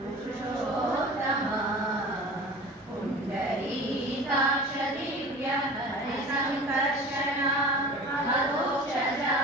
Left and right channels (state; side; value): normal; both; correlation 0.38